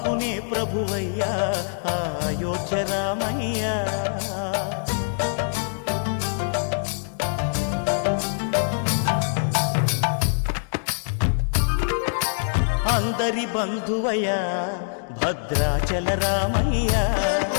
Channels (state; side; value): silent; right; digital silence